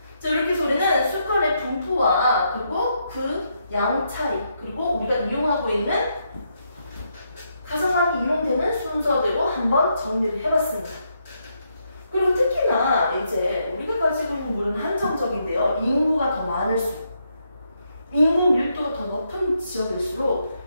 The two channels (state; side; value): inverted; both; correlation -0.79